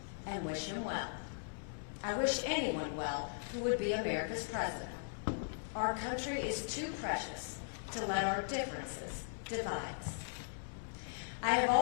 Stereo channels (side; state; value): right; silent; digital silence